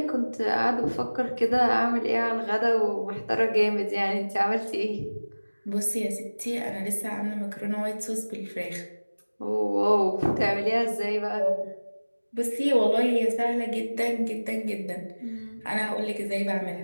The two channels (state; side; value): inverted; both; correlation -1.00